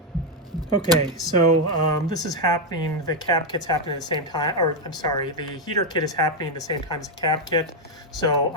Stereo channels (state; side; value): normal; both; correlation 0.03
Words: Okay, so this is happening, the cab kit's happening at the same time, or I'm sorry, the heater kit is happening at the same time as the cab kit. So